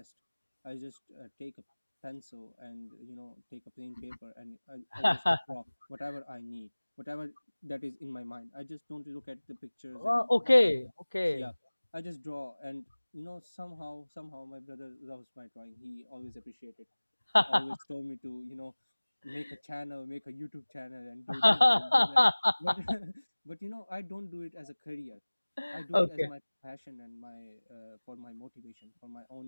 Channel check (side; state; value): both; inverted; correlation -1.00